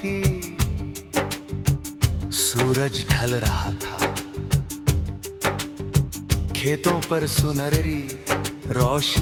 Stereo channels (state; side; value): identical; both; correlation 1.00